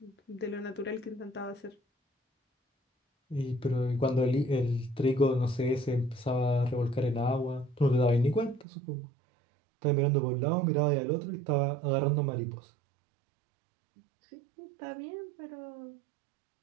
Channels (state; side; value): drops out; left; at 8.7 s